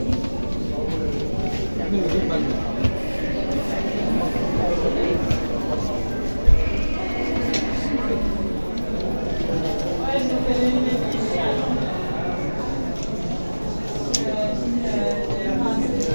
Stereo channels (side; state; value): both; inverted; correlation -1.00